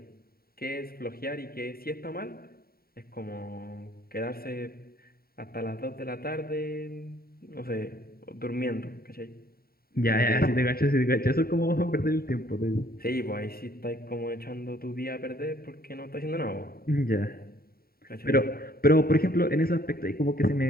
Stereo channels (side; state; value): right; late; 0.44 ms